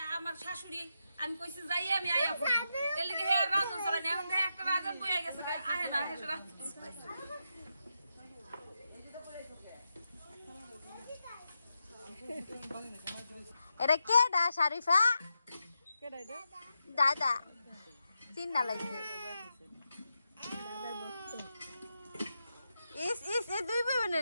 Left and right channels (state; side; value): inverted; both; correlation -0.87